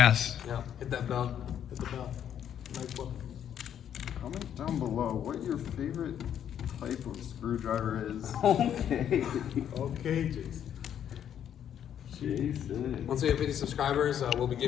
Yeah, hit that bell. Hit the bell. Nice one. Comment down below what your favorite type of screwdriver is. Okay. Okay, Jason. Jason. Once we have 50 subscribers, we'll be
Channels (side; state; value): right; quieter; 9.6 dB